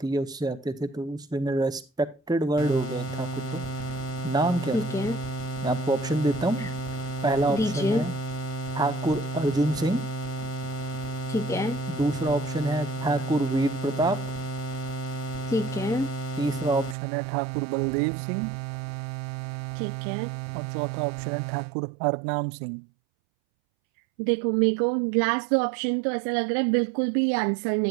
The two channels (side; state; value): left; drops out; at 16.9 s